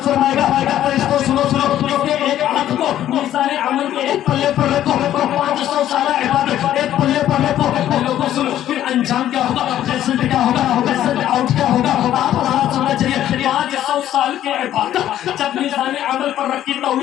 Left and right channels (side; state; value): right; quieter; 12.0 dB